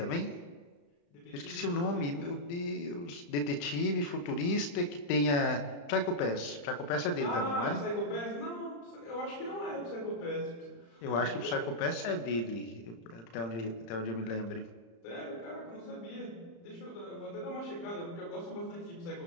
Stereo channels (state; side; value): late; right; 35 ms